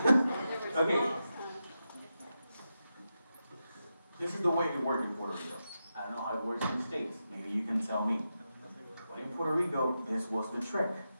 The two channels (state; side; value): inverted; both; correlation -0.89